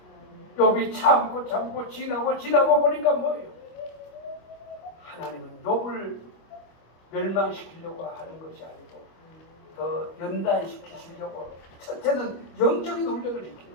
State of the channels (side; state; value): right; late; 25 ms